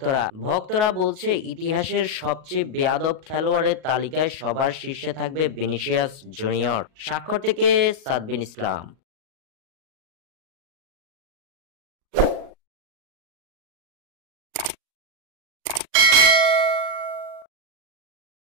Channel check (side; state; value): left; late; 38 ms